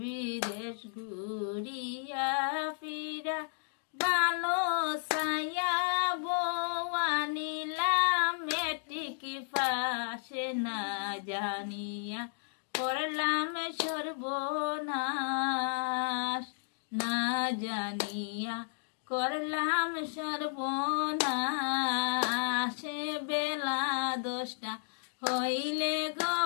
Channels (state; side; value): silent; right; digital silence